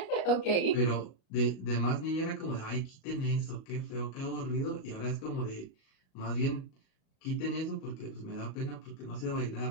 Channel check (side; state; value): right; late; 37 ms